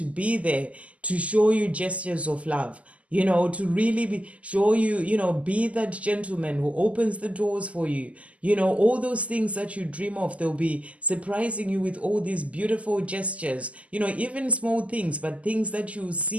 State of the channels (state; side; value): late; left; 0.067 ms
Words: be there to show you gestures of love, to really show you, be that gentleman who opens the doors for you, all those things that you dream of. They'll be surprising you with all these beautiful gestures, even small things, but things that you